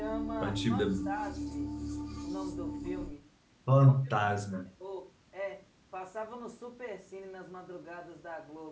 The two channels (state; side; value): identical; both; correlation 1.00